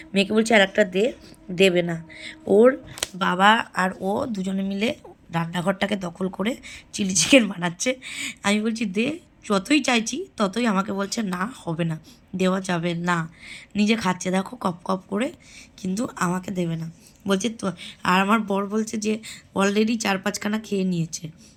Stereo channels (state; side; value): identical; both; correlation 1.00